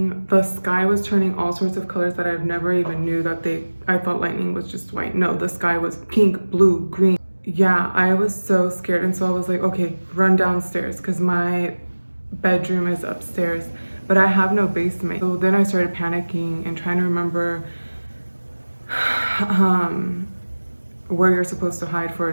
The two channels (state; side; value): inverted; both; correlation -1.00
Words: the sky was turning all sorts of colors that I've never even knew that I thought lightning was just white. No, the sky was pink, blue, green. Yeah, I was so scared, and so I was like, okay, run downstairs because my bedroom is upstairs, but I have no basement. So then I started panicking and trying to remember where you're supposed to hide for